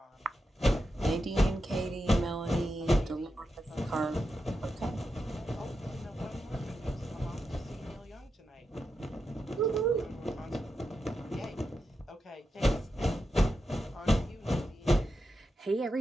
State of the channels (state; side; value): normal; both; correlation 0.88